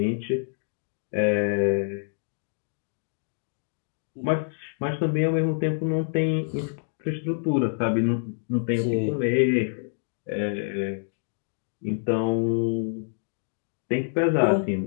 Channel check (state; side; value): silent; right; digital silence